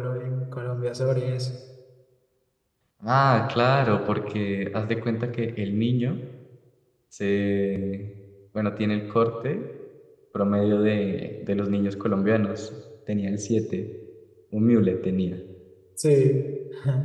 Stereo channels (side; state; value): both; identical; correlation 1.00